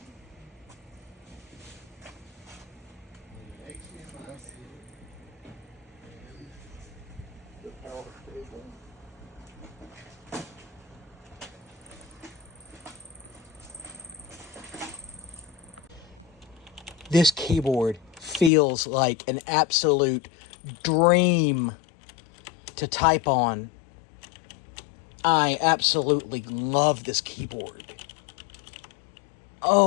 This keyboard feels like an absolute dream to type on. I absolutely love this keyboard.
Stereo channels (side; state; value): right; drops out; at 18.5 s